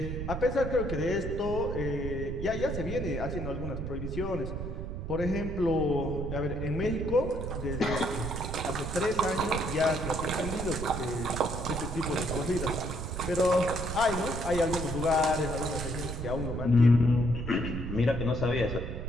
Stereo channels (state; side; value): noise; right; rumble, 5 dB below the sound